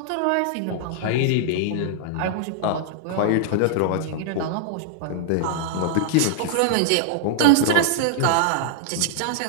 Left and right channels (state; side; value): different; both; correlation -0.01